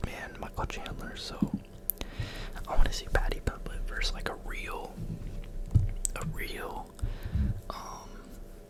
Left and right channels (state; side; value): identical; both; correlation 1.00